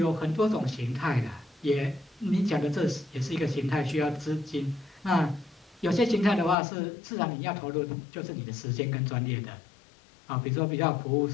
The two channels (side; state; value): right; drops out; at 6.6 s